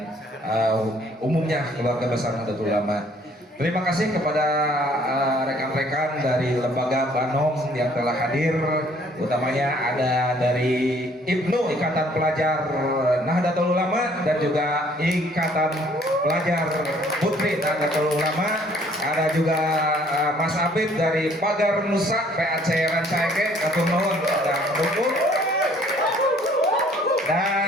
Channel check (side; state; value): both; normal; correlation 0.60